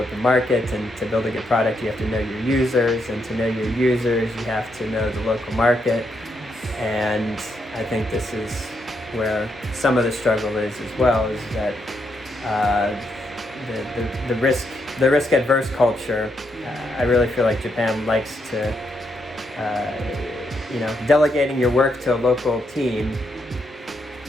market, and to build a good product, you have to know your users, and to know your users, you have to know the local market. And I think this is where some of the struggle is as well, is that the risk adverse culture. I really feel like Japan likes to, you know, delegating your work to a local team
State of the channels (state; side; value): normal; both; correlation 0.79